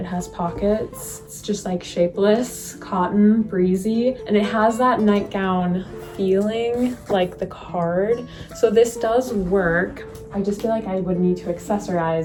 has pockets. It's just like shapeless, cotton, breezy. And it has that nightgown feeling like the card. So this does work. I just feel like I would need to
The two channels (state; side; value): identical; both; correlation 1.00